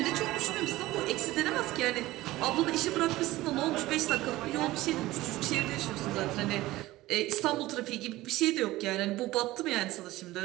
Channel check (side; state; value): left; quieter; 17.6 dB